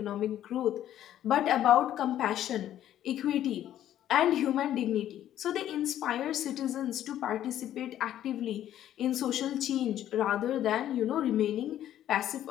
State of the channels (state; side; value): quieter; right; 11.8 dB